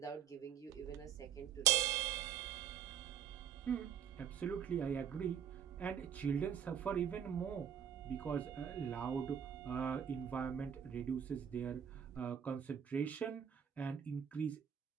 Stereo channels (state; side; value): quieter; left; 8.5 dB